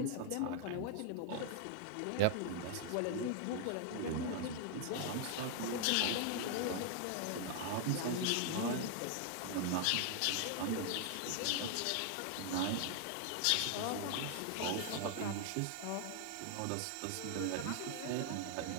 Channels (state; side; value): different; both; correlation 0.00